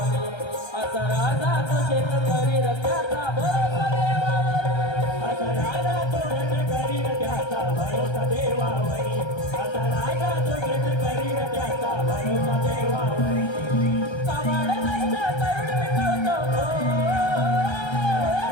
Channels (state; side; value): late; right; 1.3 ms